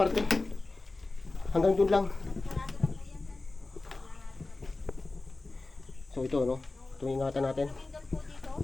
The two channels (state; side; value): quieter; right; 3.3 dB